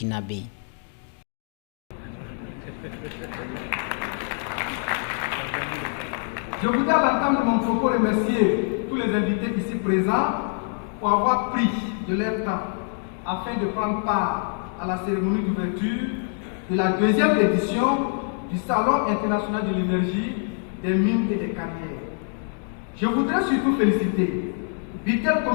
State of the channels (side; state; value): right; silent; 56 dB below the other